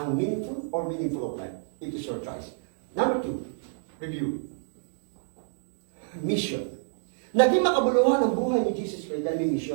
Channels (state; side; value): silent; left; digital silence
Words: or meaningful of life? It is your choice. Number 2, review. Mission. Naging makabuluhan ang buhay ni Jesus Christ dahil may